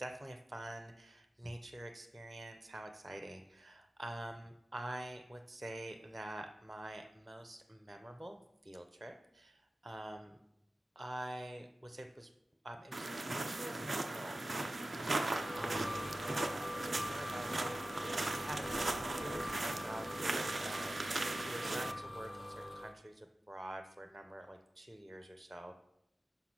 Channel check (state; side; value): normal; both; correlation 0.95